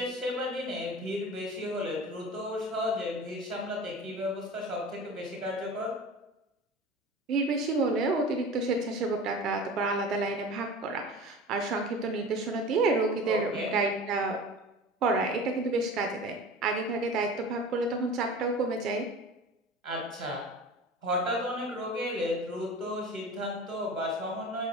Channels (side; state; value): both; normal; correlation 0.36